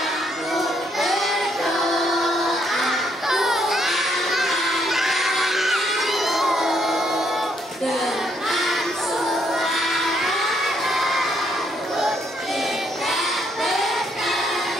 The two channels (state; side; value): normal; both; correlation 0.72